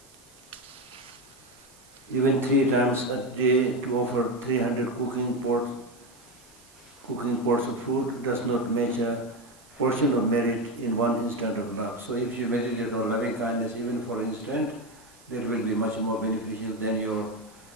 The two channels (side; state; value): right; noise; hiss, 25 dB below the sound